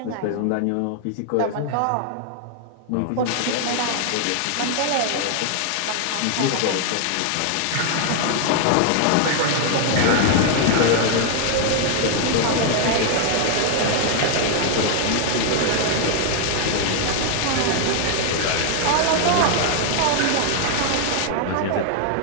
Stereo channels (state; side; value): different; both; correlation 0.00